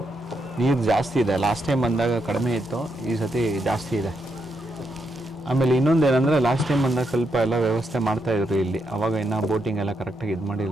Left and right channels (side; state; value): both; normal; correlation 0.81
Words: ನೀರು ಜಾಸ್ತಿ ಇದೆ. ಲಾಸ್ಟ್ ಟೈಮ್ ಬಂದಾಗ ಕಡಿಮೆ ಇತ್ತು, ಈ ಸತಿ ಜಾಸ್ತಿ ಇದೆ. ಆಮೇಲೆ ಇನ್ನೊಂದೇನೆಂದರೆ ಲಾಸ್ಟ್ ಟೈಮ್ ಬಂದಾಗ ಸ್ವಲ್ಪ ಎಲ್ಲ ವ್ಯವಸ್ಥೆ ಮಾಡ್ತಾಯಿದ್ರು ಇಲ್ಲಿ, ಅವಾಗ ಇನ್ನೂ ಬೋಟಿಂಗ್ ಎಲ್ಲ ಕರೆಕ್ಟಾಗಿ ಇದು